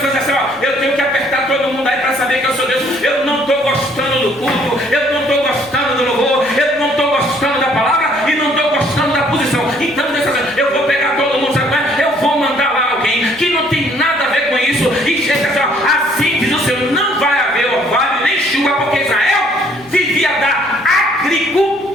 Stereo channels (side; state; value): right; noise; hum, 28 dB below the sound